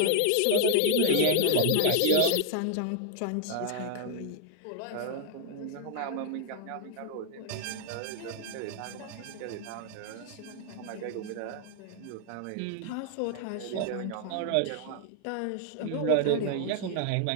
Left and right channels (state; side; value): different; both; correlation 0.00